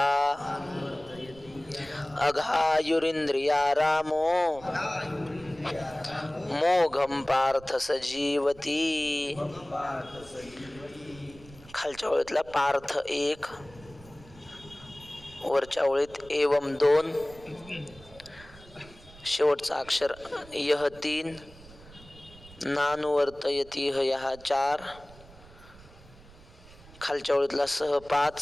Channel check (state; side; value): noise; right; rumble, 21 dB below the sound